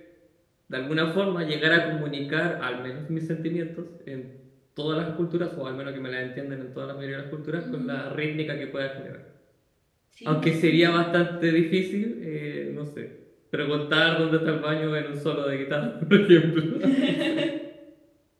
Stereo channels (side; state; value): both; identical; correlation 1.00